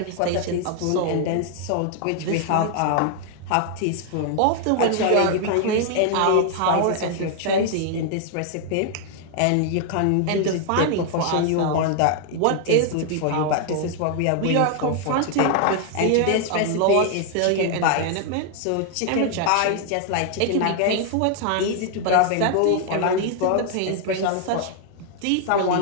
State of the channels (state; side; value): different; both; correlation 0.00